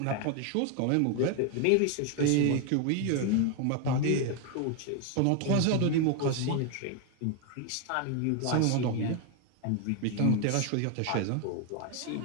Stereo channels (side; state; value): both; different; correlation 0.01